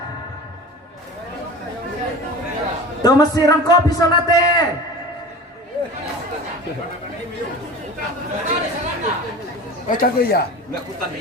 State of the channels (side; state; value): both; normal; correlation 0.35